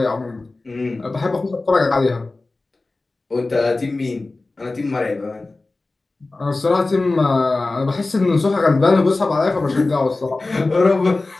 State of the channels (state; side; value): quieter; right; 3.3 dB